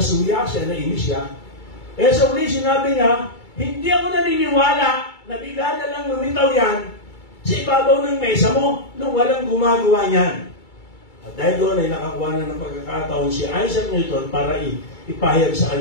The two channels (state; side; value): late; right; 2.3 ms